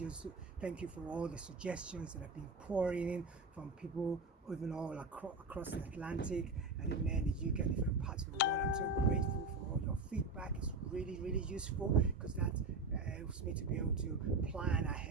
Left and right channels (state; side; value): quieter; left; 3.5 dB